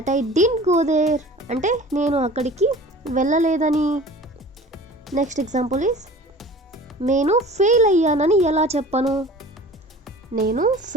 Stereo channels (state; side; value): normal; both; correlation 0.42